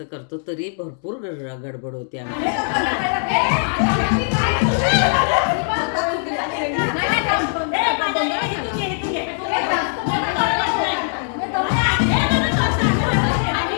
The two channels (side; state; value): right; silent; digital silence